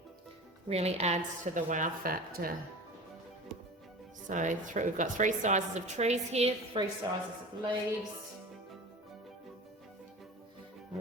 really adds to the wow factor. So we've got three sizes of trees here, three sizes of leaves.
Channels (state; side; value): normal; both; correlation 0.35